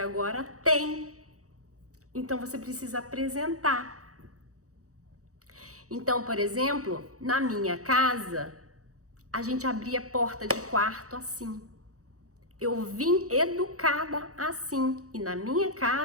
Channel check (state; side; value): late; left; 0.65 ms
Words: tem. Então você precisa apresentar. Então, por exemplo, na minha casa, a gente abria a porta de quarto assim. Eu vim educada assim. E na minha